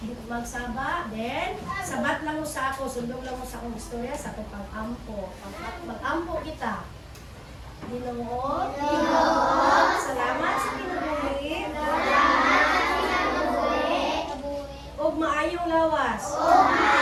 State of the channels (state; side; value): identical; both; correlation 1.00